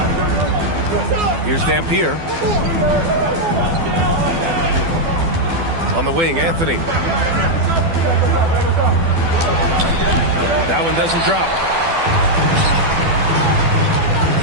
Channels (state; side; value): late; left; 12 ms